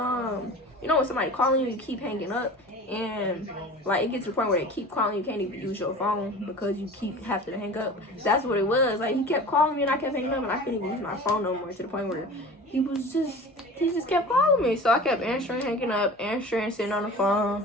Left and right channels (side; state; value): both; normal; correlation 0.38